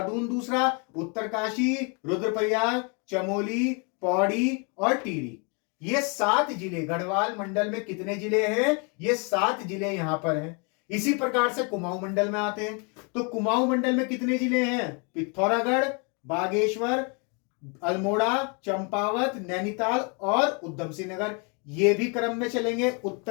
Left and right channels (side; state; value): right; quieter; 34.7 dB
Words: दूसरा, उत्तरकाशी, रुद्रप्रयाग, चमोली, पौड़ी और टिहरी, ये 7 जिले गढ़वाल मंडल में कितने जिले हैं, ये 7 जिले यहां पर हैं। इसी प्रकार से कुमाऊं मंडल में आते हैं, तो कुमाऊं मंडल में कितने जिले हैं, पिथौरागढ़, बागेश्वर, अल्मोड़ा, चंपावत, नैनीताल और उधम सिंह नगर। ये भी क्रम में चलेंगे